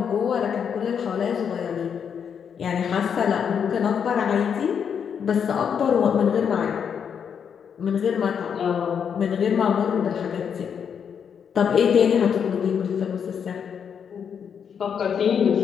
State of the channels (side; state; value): right; quieter; 7.4 dB